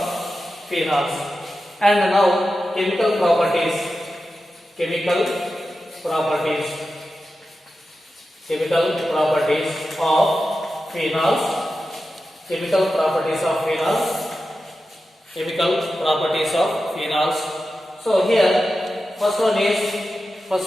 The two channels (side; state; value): both; normal; correlation 0.92